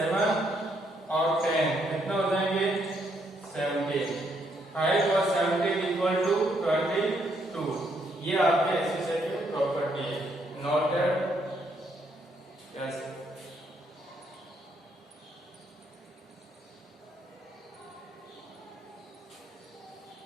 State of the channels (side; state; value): both; normal; correlation 0.73